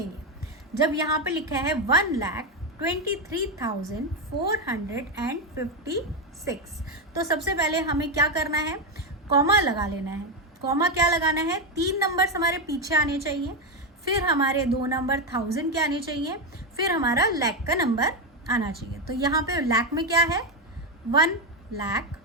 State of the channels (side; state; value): both; normal; correlation 0.09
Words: जब यहाँ पे लिखा है 1,23,456, तो सबसे पहले हमें क्या करना है, कॉमा लगा लेना है। कॉमा क्या लगाना है, 3 नंबर्स हमारे पीछे आने चाहिए, फिर हमारे 2 नंबर 1000 के आने चाहिए, फिर हमारा लाख का नंबर आना चाहिए। तो यहाँ पे लाख में क्या है 1 लाख,